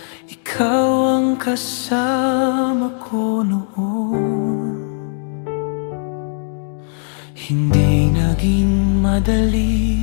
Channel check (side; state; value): right; silent; 67 dB below the other